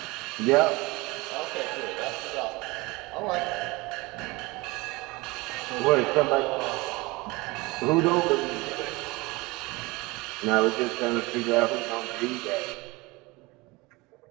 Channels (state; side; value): quieter; left; 23.5 dB